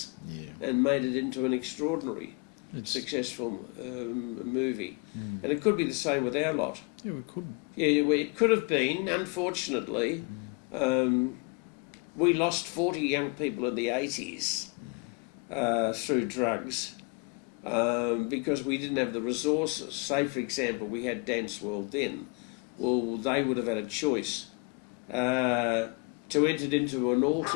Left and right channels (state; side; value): quieter; right; 33.2 dB